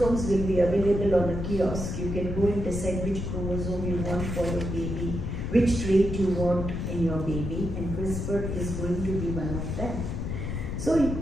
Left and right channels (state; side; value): noise; left; rumble, 4 dB below the sound